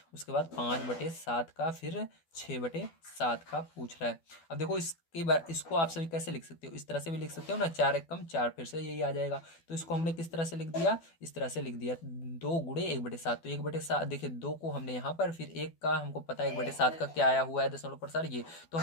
उसके बाद 5/7 का, फिर 6/7 का पूछ रहा है। अब देखो इस कई बार इसको आप सभी कैसे लिख सकते हो, इस तरह से भी लिख सकते हो ना, 4 एक कम 4, फिर से यही आ जाएगा। तो इसको हमने किस तरह से लिख दिया, इस तरह से लिख दिया, 2 गुणे 1/7। तो 1/7 देखिए 2 को हमने यहाँ पर, फिर 1 का हमको पता है 1/7 का क्या आया हुआ है दशमलव प्रसार ये, तो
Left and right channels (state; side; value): late; right; 12 ms